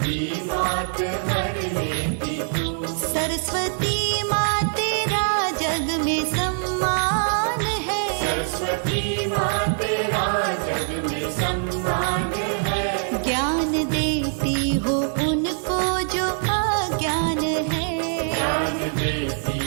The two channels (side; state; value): left; silent; digital silence